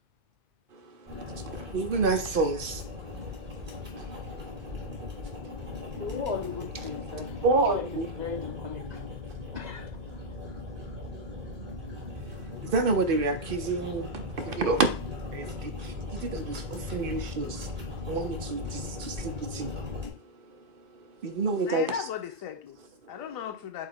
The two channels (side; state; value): left; late; 2.6 ms